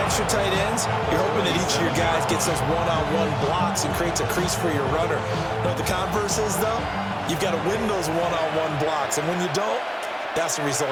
tight ends, you're hoping that each of your guys gets those one-on-one blocks and creates a crease for your runner. You know what the converse is, though? You've got to win those one-on-one blocks, and when you don't, that's the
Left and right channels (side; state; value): both; identical; correlation 1.00